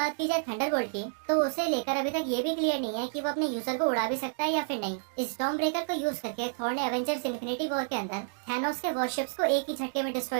की जाए थंडरबोल्ट की, तो उसे लेकर अभी तक ये भी क्लियर नहीं है कि वो अपने यूजर को उड़ा भी सकता है या फिर नहीं। स्टॉर्म ब्रेकर को यूज करके थॉर ने एवेंजर्स इन्फिनिटी वॉर के अंदर थैनोस के वॉरशिप्स को एक ही झटके में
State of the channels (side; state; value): left; silent; digital silence